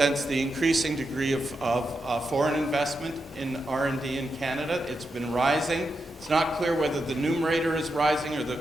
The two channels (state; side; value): normal; both; correlation 0.86